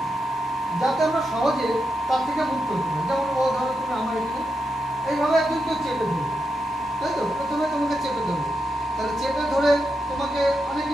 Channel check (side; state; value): both; normal; correlation 0.86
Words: যাতে আমরা সহজে তার থেকে মুক্ত হতে পারি। যেমন ও ধরো তুমি আমার একটু এইভাবে একজন কেউ চেপে ধরবে, তাই তো? প্রথমে তোমাকে চেপে ধরবে, তাহলে চেপে ধরে তোমাকে অনেক